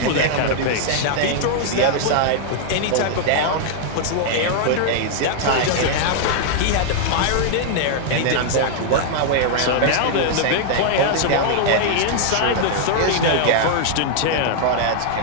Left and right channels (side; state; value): both; different; correlation -0.01